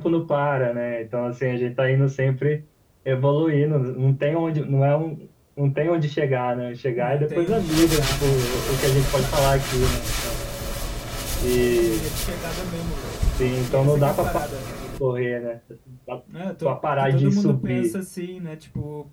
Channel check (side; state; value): both; identical; correlation 1.00